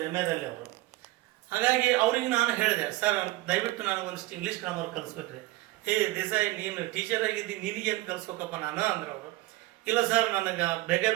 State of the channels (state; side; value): quieter; left; 18.5 dB